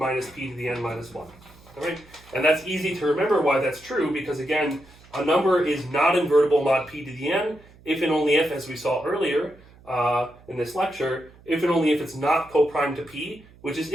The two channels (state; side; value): noise; right; hum, 25 dB below the sound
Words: p to the n minus 1. All right? And that's easy to remember why that's true, because again, a number is not invertible mod p to the n if and only if, as we saw earlier in this lecture, if and only if it's not co-prime to p, which is